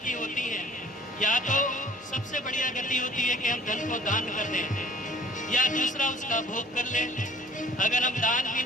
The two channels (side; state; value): both; normal; correlation 0.52